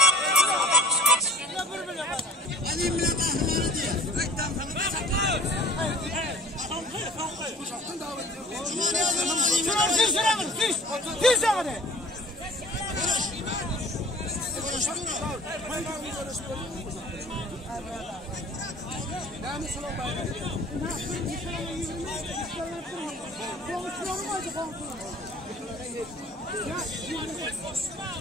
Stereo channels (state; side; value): normal; both; correlation 0.43